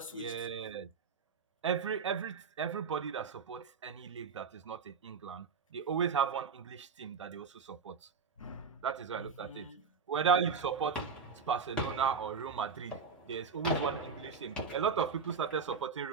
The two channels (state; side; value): quieter; left; 5.6 dB